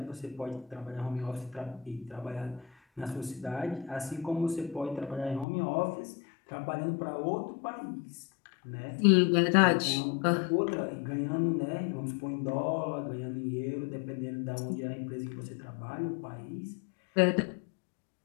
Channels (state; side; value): drops out; right; at 5.5 s